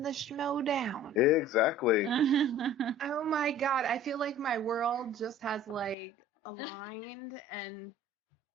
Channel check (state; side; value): drops out; right; at 6.0 s